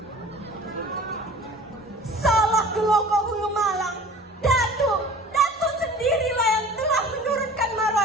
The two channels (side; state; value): both; normal; correlation 0.44